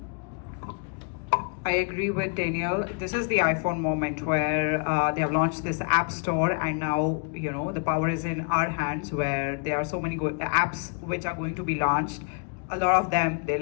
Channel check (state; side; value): quieter; right; 38.1 dB